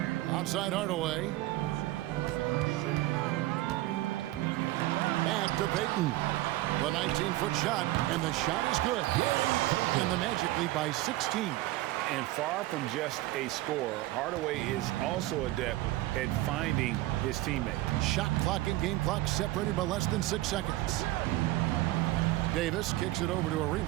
Outside Hardaway. Back to Payton. The 19-foot shot, and the shot is good. And the Magic lead by 16. And far from just a scorer, Hardaway is also adept at finding his teammate. Shot clock and game clock separated by less than 6 seconds. Davis kicks it over to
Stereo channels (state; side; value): quieter; left; 17.2 dB